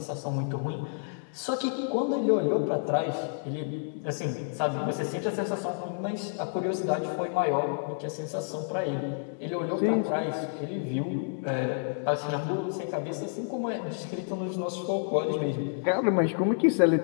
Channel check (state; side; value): silent; right; digital silence